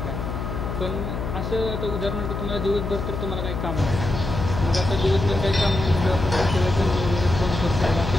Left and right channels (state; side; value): noise; left; hum, 4 dB below the sound